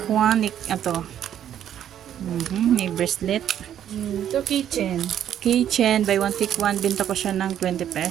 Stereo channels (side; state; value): left; quieter; 10.3 dB